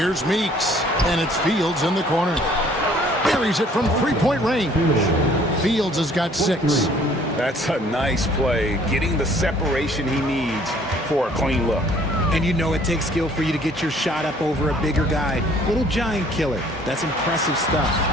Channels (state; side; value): normal; both; correlation 0.58